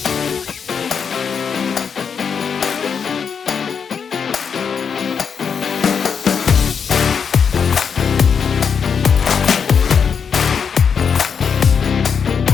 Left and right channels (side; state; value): right; quieter; 6.6 dB